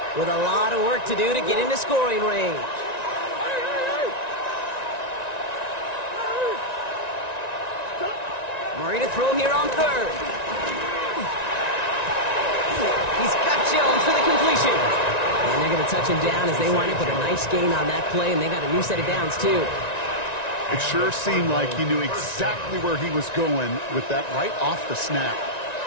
with a lot of work to do to get into scoring range. Murray to throw here on 3rd. He's got Jones for the completion. And they're going to touch him down as they wind up with a nice gain on that play, and they got a new set of downs, too. It sure seemed like he knew exactly where he was going with that right off the snap.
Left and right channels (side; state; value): right; late; 1.9 ms